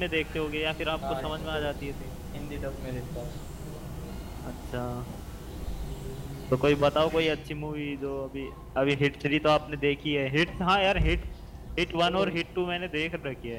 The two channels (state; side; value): identical; both; correlation 1.00